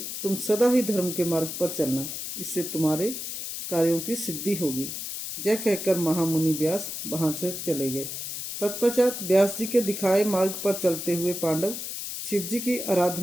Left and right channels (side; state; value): left; noise; hiss, 6 dB below the sound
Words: तुम सदा ही धर्म के मार्ग पर चलना, इससे तुम्हारे कार्यों की सिद्धि होगी। यह कहकर महामुनि व्यास वहां से चले गए। तत्पश्चात व्यास जी के दिखाए मार्ग पर चलते हुए पांडव शिव जी की